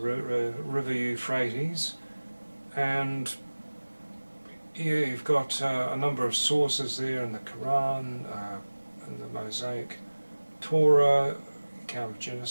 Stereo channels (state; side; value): inverted; both; correlation -1.00